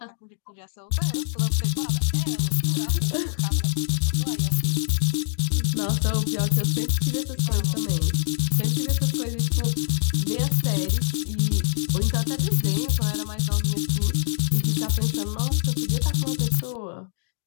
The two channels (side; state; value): right; silent; digital silence